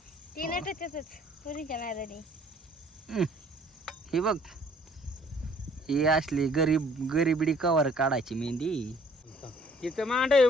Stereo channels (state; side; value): normal; both; correlation 0.58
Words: ती नटतच पुरीच्या नादाने. हे बघ ही असली गरीबडी कवर काढायची मेहंदी. तिथं मांड आहे